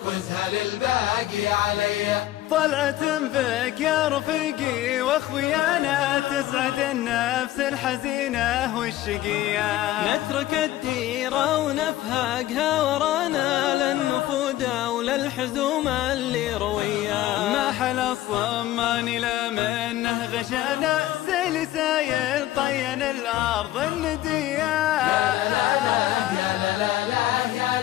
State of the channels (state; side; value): quieter; right; 14.7 dB